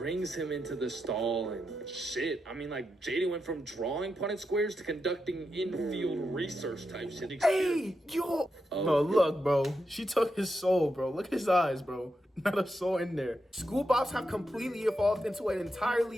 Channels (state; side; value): normal; both; correlation 0.86